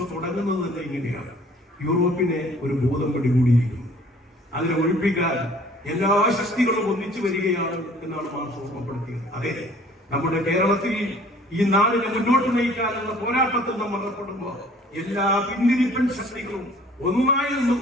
തുടങ്ങുന്നത് തന്നെ ഇങ്ങനെയാണ്. യൂറോപ്പിനെ ഒരു ബോധം പിടികൂടിയിരിക്കുന്നു. അതിനെ ഒഴിപ്പിക്കാൻ എല്ലാ ശക്തികളും ഒന്നിച്ചു വരികയാണ് എന്നാണ് മാർക്സ് ഓർമ്മപ്പെടുത്തിയത്. അതെ, നമ്മുടെ കേരളത്തിൽ ഈ നാടിനെ മുന്നോട്ട് നയിക്കാനുള്ള പോരാട്ടത്തിൽ നമ്മൾ ഏർപ്പെടുമ്പോൾ എല്ലാ പിന്തിരിപ്പൻ ശക്തികളും ഒന്നായി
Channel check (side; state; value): both; normal; correlation 0.53